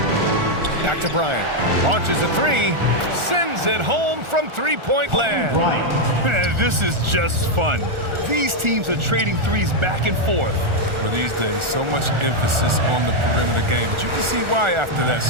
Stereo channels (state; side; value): late; left; 1.4 ms